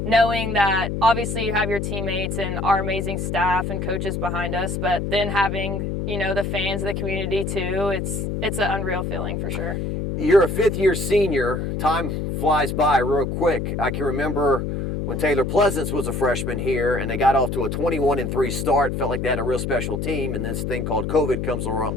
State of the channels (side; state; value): left; noise; hum, 2 dB below the sound